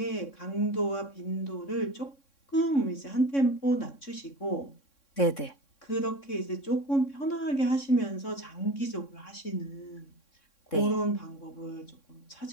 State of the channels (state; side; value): late; right; 3.6 ms